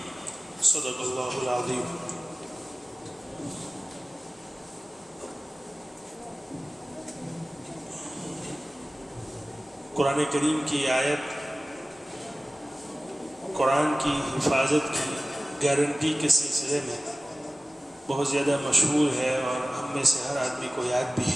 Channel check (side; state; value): both; normal; correlation 0.97